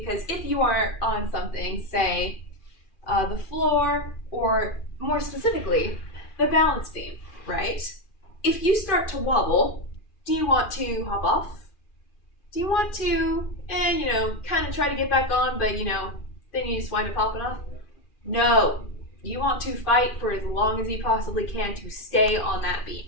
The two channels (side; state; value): right; late; 2.4 ms